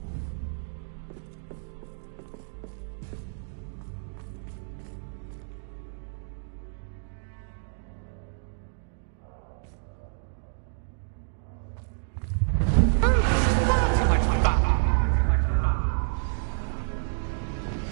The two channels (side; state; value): left; silent; digital silence